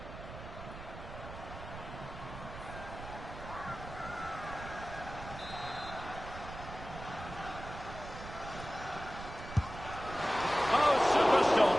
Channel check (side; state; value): right; noise; rumble, 11 dB below the sound